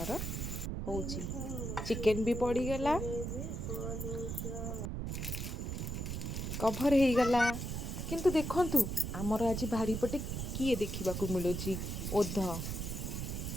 होची। चिकेन भी पड़ी गला। कभर हो गला। किंतु देखंतु आमर आज भारी पटे किए देखा मिलूची ओध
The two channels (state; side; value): noise; right; rumble, 3 dB below the sound